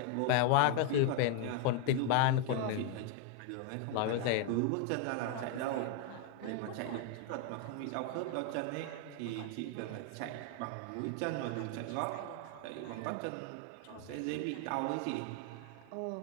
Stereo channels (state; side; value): different; both; correlation 0.01